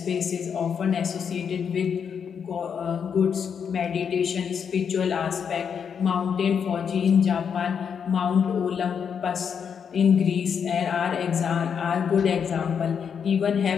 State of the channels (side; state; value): right; quieter; 7.1 dB